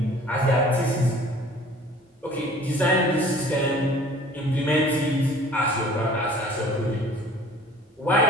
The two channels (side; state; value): both; normal; correlation 0.49